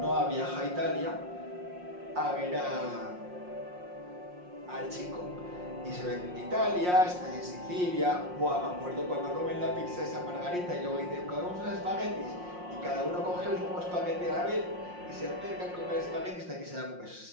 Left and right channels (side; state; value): left; late; 5.6 ms